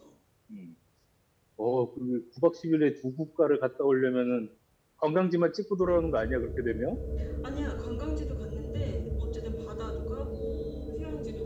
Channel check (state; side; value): identical; both; correlation 1.00